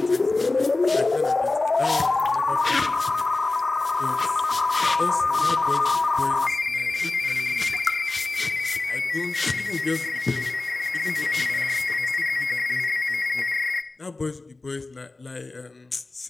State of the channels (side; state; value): right; quieter; 3.3 dB